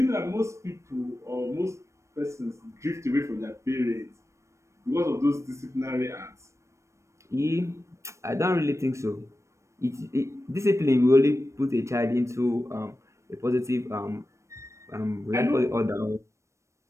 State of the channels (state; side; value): late; left; 0.14 ms